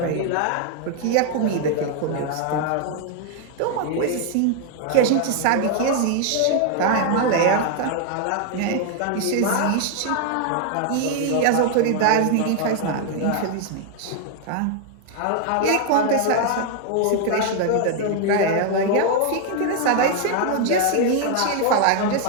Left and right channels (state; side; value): different; both; correlation 0.00